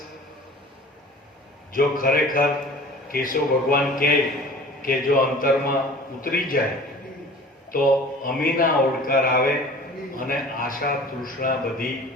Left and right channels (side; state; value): both; normal; correlation 0.44